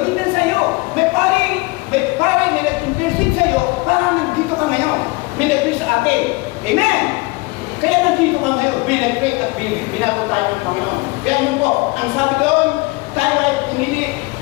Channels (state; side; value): quieter; right; 24.3 dB